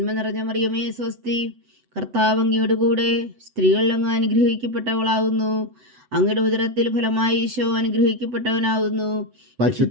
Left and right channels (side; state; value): left; late; 8.0 ms